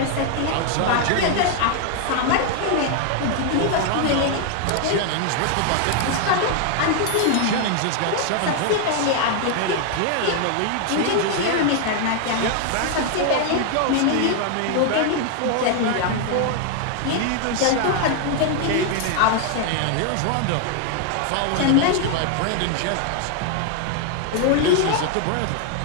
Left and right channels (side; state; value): both; different; correlation 0.00